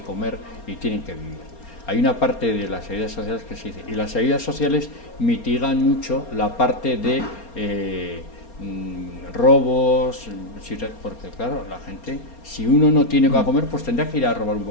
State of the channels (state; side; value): late; right; 4.3 ms